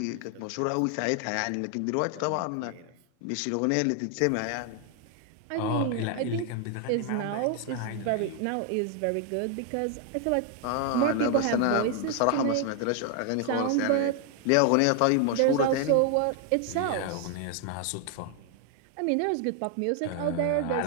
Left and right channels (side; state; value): both; different; correlation 0.00